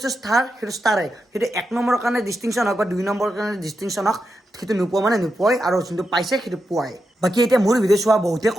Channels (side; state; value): both; normal; correlation 0.87